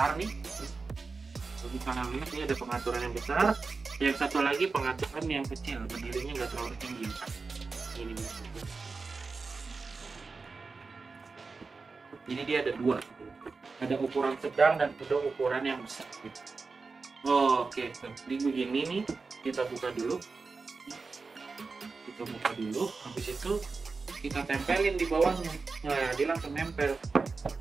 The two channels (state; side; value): quieter; left; 4.3 dB